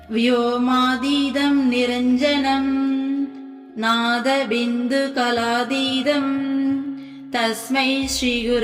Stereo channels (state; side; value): identical; both; correlation 1.00